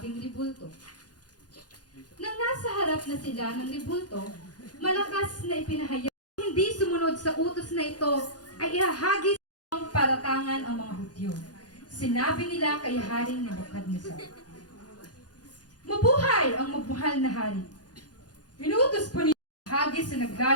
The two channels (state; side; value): late; right; 0.69 ms